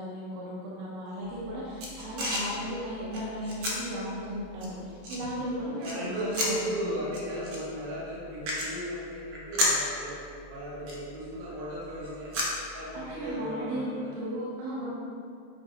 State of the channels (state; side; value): late; left; 27 ms